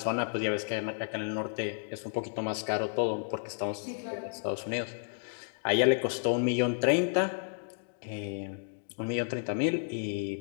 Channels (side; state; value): right; silent; digital silence